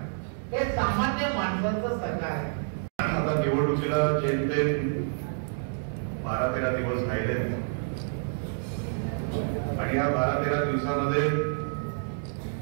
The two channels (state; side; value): silent; left; digital silence